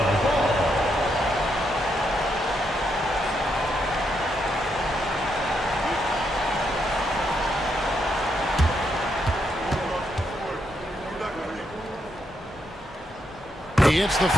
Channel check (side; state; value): both; normal; correlation 0.79